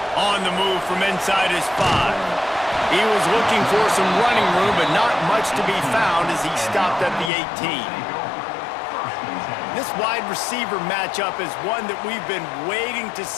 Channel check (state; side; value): drops out; right; at 7.3 s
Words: On the move from inside his 5. He was looking for some running room, but not much to be found as he stopped at the 18. This wide receiver matchup is one that we've been waiting to